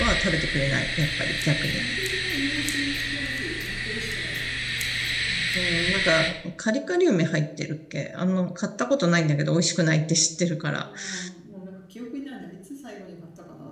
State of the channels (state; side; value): identical; both; correlation 1.00